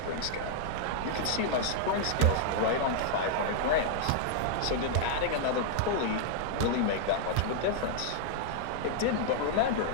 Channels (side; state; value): both; different; correlation -0.01